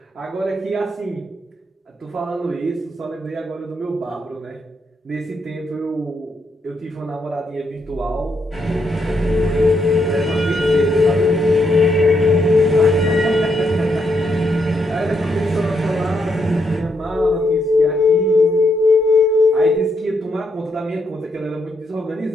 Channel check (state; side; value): normal; both; correlation 0.78